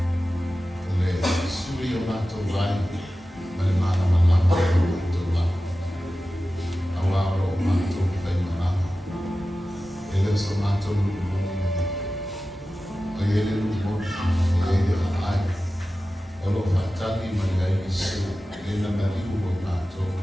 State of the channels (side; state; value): both; normal; correlation 0.95